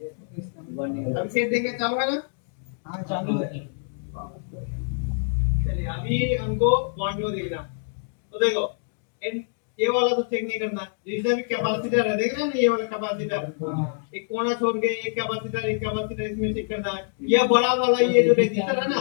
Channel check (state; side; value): silent; right; digital silence